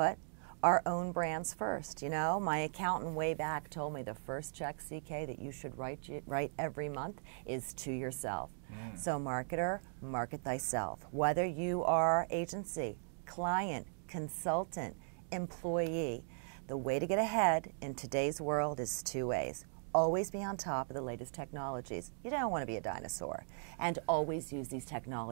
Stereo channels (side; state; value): left; silent; digital silence